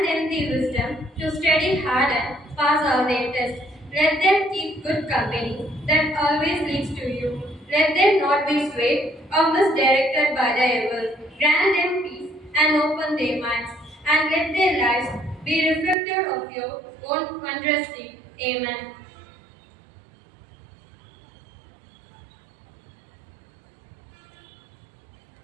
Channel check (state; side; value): drops out; left; at 16.0 s